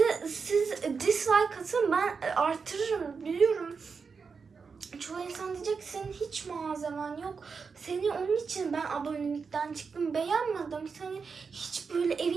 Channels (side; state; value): left; quieter; 5.3 dB